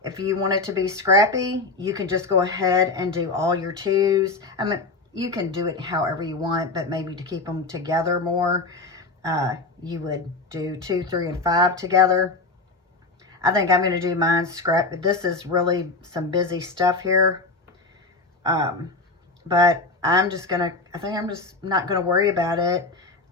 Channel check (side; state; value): right; quieter; 3.4 dB